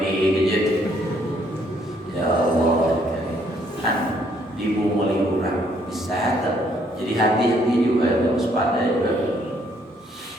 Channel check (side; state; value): both; normal; correlation 0.67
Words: gadget? Ya Allah, kan dibumuli orang bisa jadi hati-hati juga, harus waspada juga.